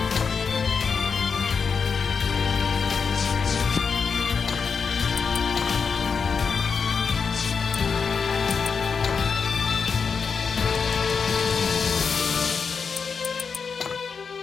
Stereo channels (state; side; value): quieter; right; 5.6 dB